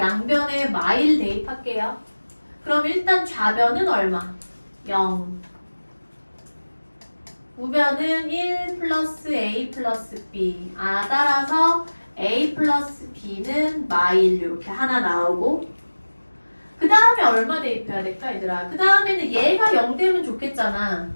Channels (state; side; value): inverted; both; correlation -1.00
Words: 마일 대입할게요. 그럼 일단 좌변은 얼마? 0. 우변은 1 플러스 a 플러스 b. 따라서 a 플러스 b는 마일 이렇게 하나 나오고 그 다음에 얼마 대입해야 될까 얘들아? 그 다음에는 얘가 0 되면 좋겠잖아.